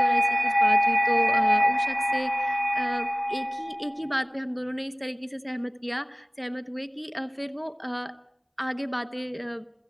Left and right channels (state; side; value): identical; both; correlation 1.00